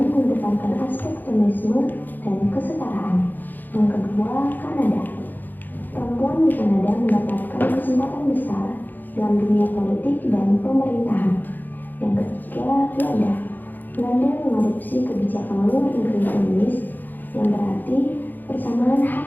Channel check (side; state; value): right; late; 0.087 ms